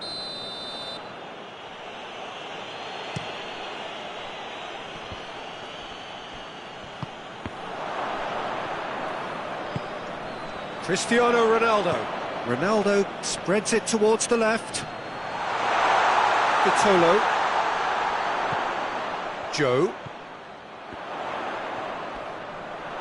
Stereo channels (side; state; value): both; identical; correlation 1.00